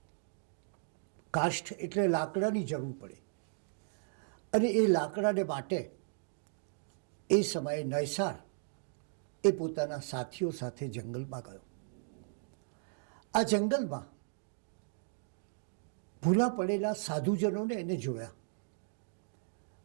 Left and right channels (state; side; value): silent; left; digital silence